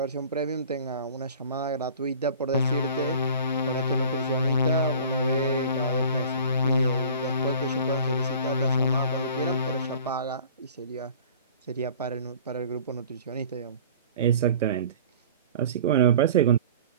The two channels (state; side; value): inverted; both; correlation -0.44